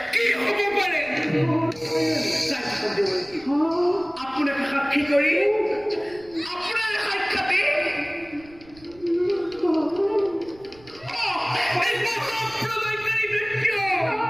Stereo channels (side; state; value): right; noise; rumble, 24 dB below the sound